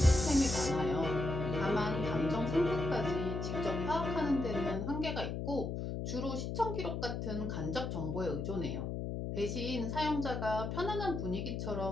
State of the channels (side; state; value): left; noise; hum, 3 dB below the sound